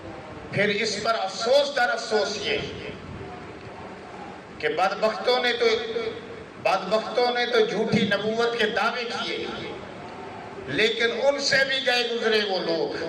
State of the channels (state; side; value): identical; both; correlation 1.00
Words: پھر اس پر افسوس در افسوس یہ کہ بدبختوں نے تو جھوٹی نبوت کے دعوے کیے، لیکن ان سے بھی گئے گزرے وہ لوگ